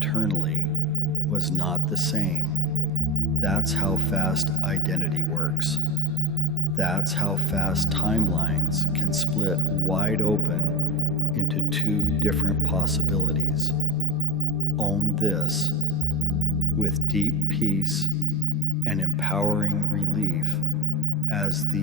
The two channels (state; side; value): normal; both; correlation 0.41